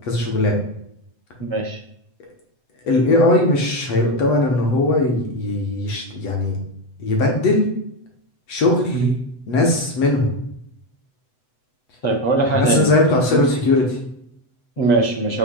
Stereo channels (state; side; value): late; right; 7.9 ms